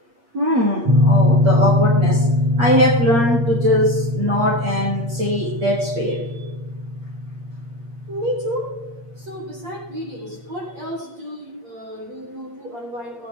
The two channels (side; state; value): left; late; 8.6 ms